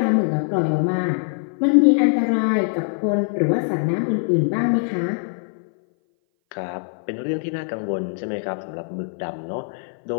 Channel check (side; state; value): right; silent; 59 dB below the other